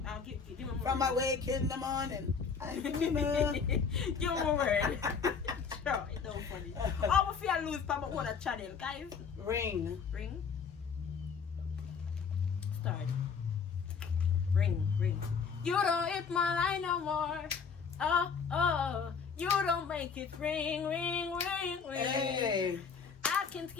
me more. From my wake in the morning. I'm the winner. Give me a word. Sure, it's so funny. Oh, if I lose from my channel, guys. Ring. Start. Ring. You don't hit my line no more. Oh. You don't make it ring. Hey. I can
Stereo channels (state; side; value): quieter; right; 6.0 dB